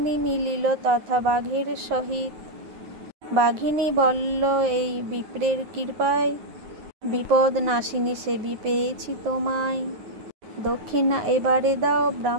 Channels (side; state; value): left; late; 9.4 ms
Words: মিলিল তথা বাঘের সহিত। বাঘিনী বলল এই বিপ্রের কৃপায়, বিপদ নাশিনী সেবী পেয়েছি তোমায়। দক্ষিণা এবারে দাও